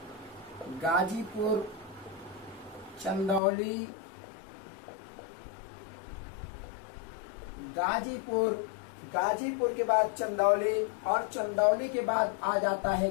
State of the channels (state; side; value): drops out; right; at 3.4 s